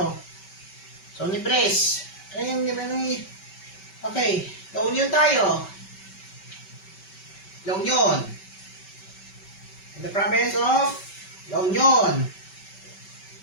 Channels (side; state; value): right; late; 5.2 ms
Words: Sony Press. Ayun, okay, La Union tayo. La Union. In the province of La Union.